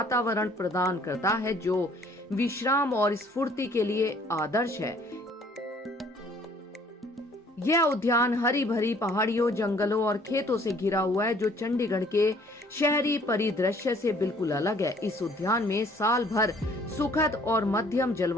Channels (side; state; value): both; normal; correlation 0.58